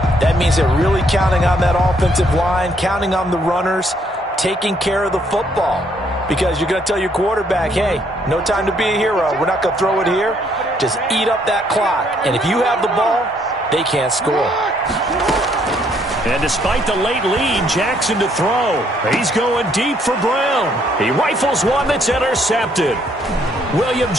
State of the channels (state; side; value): normal; both; correlation 0.69